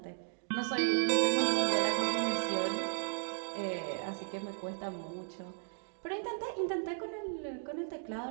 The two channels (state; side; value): silent; left; digital silence